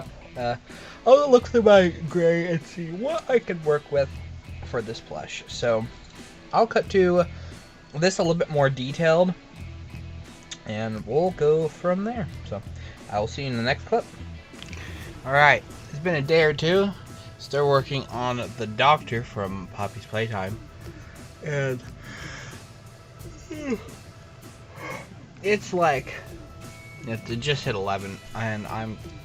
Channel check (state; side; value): identical; both; correlation 1.00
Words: I'll look through my gray and see what I can work with for this plush. So I'll cut to this a little bit more detailed, and we'll go from there. So I will see you in the next clip. Alright, it's been a day or two. Still working on the Docter from Poppy's Playtime. And it's like, it just hit 11, and I'm